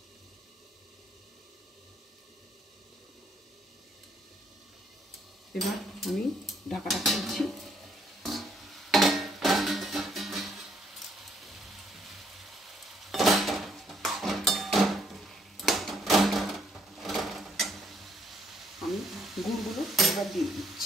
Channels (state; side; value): normal; both; correlation 0.69